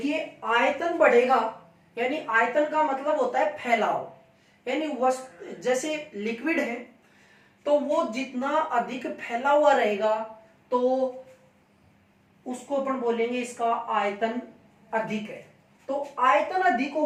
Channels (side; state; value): both; identical; correlation 1.00